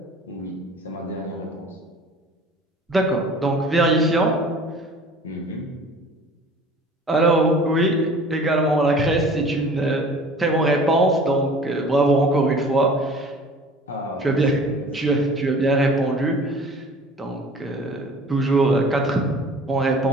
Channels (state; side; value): normal; both; correlation 0.46